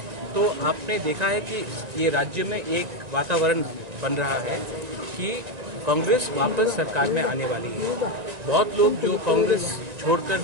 तो आपने देखा है कि ये राज्य में एक वातावरण बन रहा है कि कांग्रेस वापस सरकार में आने वाली है। बहुत लोग जो कांग्रेस छोड़कर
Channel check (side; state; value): left; late; 1.9 ms